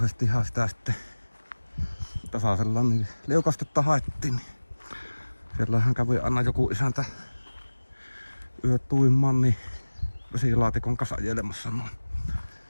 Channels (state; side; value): inverted; both; correlation -1.00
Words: sitä sitten tasaisella niin liukastetta haettiin. Niin siellähän kävi aina joku isäntä yöt tuimaan niin vesilaatikon kasajelemassa noin